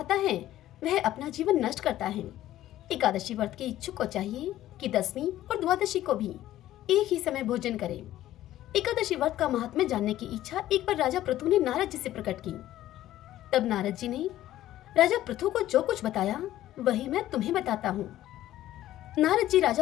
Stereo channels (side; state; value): right; quieter; 13.8 dB